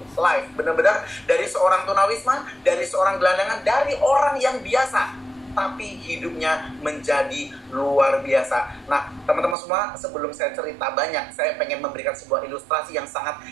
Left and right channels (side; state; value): left; drops out; at 9.6 s